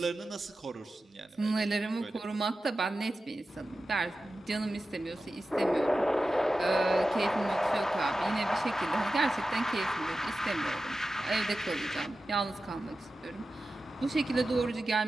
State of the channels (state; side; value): normal; both; correlation 0.93